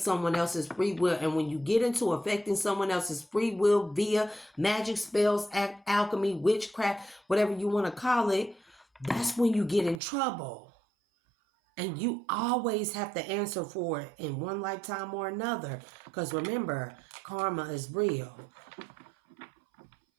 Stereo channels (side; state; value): left; drops out; at 10.0 s